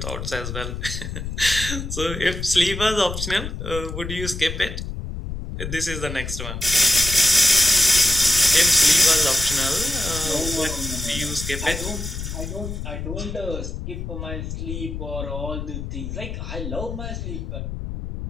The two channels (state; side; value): noise; left; rumble, 6 dB below the sound